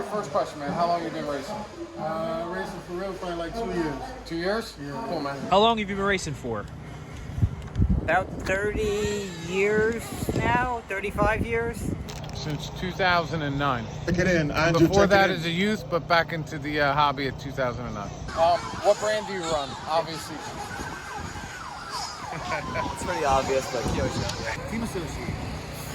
first question, man. How long have you been racing? Racing for real, probably like 2 years. 2 years? Yeah. Cool, man. How long have you been racing for? About 30 years now, 35 years. Since 2009. Check it in, Andrew. Before check that it in. as a youth, but back into the hobby at 2009. What brand do you run? Obviously. It's pretty obvious, but Team Associated.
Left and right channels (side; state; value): both; identical; correlation 1.00